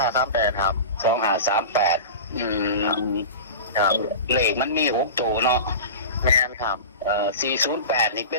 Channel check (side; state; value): both; inverted; correlation -0.30